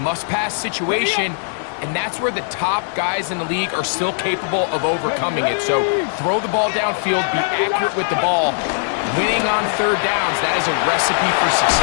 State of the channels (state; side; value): silent; right; digital silence